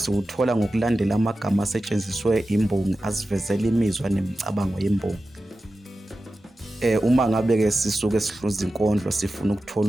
ngokulandela amagama asetshenziswe imbongi asivezela imizwa nemicabango yembongi. Uma ngabe-ke sisuke sihluza inkondlo sifuna ukuthola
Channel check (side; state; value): both; normal; correlation 0.93